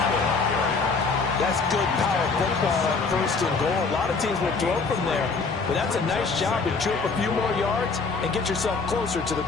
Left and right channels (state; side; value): quieter; right; 4.4 dB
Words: That's good power football on first and goal. A lot of teams will throw from there, but that's a nice job to chew up a few more yards and get yourself closer to the